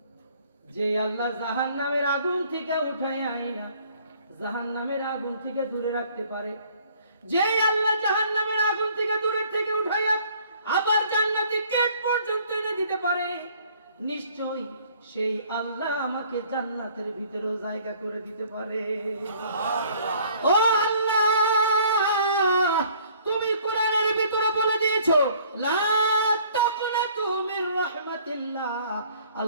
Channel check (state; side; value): inverted; both; correlation -0.57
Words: যে আল্লাহ জাহান্নামের আগুন থেকে উঠাই আইনা জাহান্নামের আগুন থেকে দূরে রাখতে পারে, যে আল্লাহ জাহান্নামের আগুন থেকে দূরে থেকে উঠাইয়া আবার জান্নাতি গেট পর্যন্ত এনে দিতে পারে, নিশ্চয়ই সেই আল্লাহ আমাকে জান্নাতের ভিতরেও জায়গা করে দিতে পারে। ও আল্লাহ, তুমি কোরআনের ভিতরে বলে দিয়েছো লা তাকনাতু মির রাহমাতিল্লাহ,